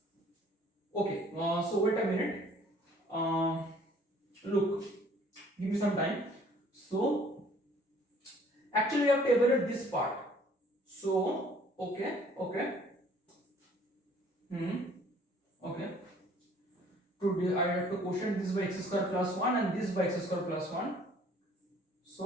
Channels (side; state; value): both; normal; correlation 0.56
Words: okay, so wait a minute, look, give me some time. So actually we have to evaluate this part. So okay, today I have to quotient this by x square plus 1 and this by x square plus 1.